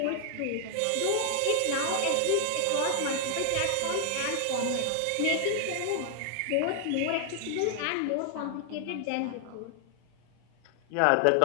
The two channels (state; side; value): different; both; correlation 0.00